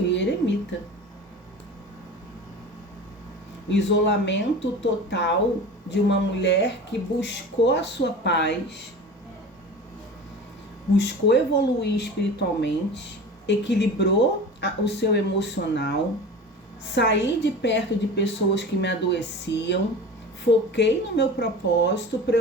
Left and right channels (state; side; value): normal; both; correlation 0.35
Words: eremita. O isolamento total de uma mulher que buscou a sua paz, buscou evoluir espiritualmente, equilibrou o seu emocional, saí de perto de pessoas que me adoeciam, foquei no meu propósito para